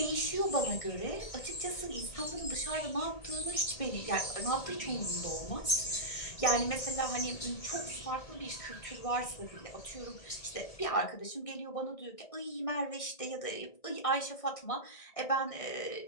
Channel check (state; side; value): late; right; 1.6 ms